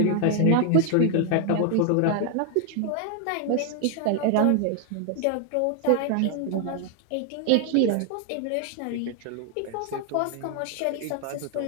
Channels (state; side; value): different; both; correlation 0.00